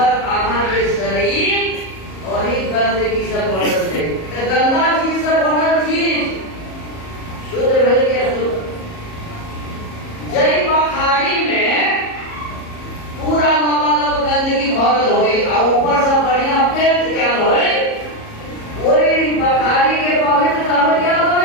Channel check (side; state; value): right; late; 37 ms